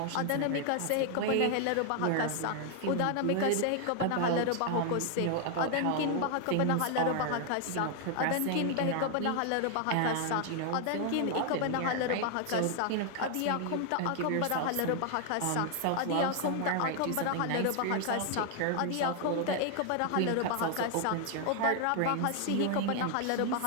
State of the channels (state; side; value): different; both; correlation 0.00